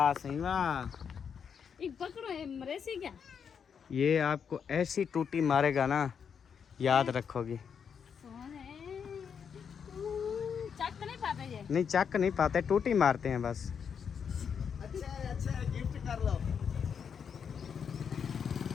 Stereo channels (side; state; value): right; quieter; 7.0 dB